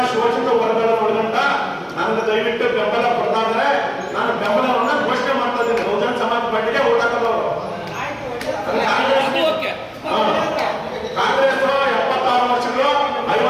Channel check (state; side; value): identical; both; correlation 1.00